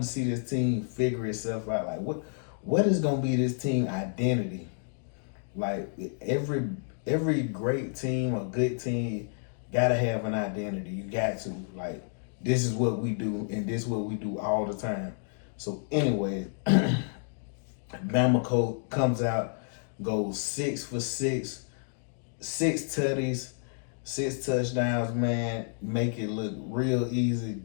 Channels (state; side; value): silent; right; digital silence